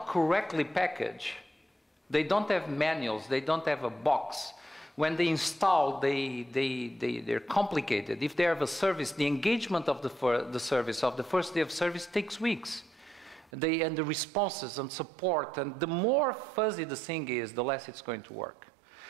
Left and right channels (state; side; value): drops out; left; at 13.5 s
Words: correctly packaged. They don't have manuals. They don't have a box. When they install, they're complicated. If they have a service, the engagement of the service, of the first day of service, takes weeks. And the responses and support, and the more fuzzy the thing is, the less it's going to work.